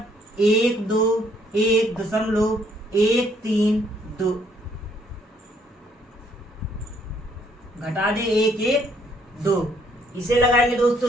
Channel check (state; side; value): normal; both; correlation 0.67